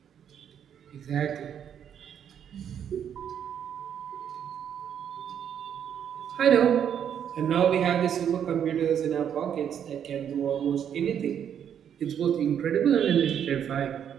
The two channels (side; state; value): left; quieter; 8.9 dB